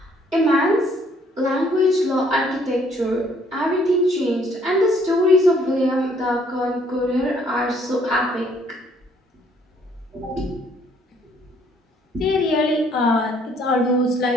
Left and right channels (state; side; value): normal; both; correlation 0.64